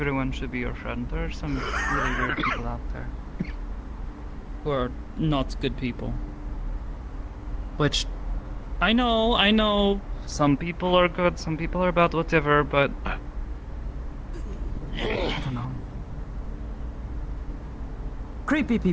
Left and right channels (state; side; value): identical; both; correlation 1.00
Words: should be your friend. There are some really weird people out there. Who are not good people. Which, I know, some people are good, some people are bad, whatever, but... I don't know. Creepy